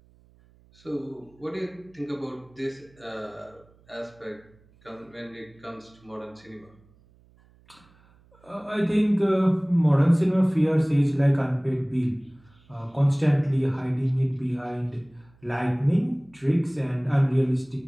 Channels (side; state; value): right; noise; hum, 30 dB below the sound